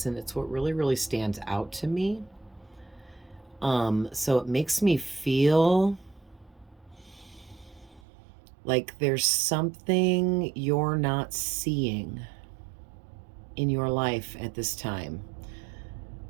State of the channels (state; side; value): drops out; left; at 8.0 s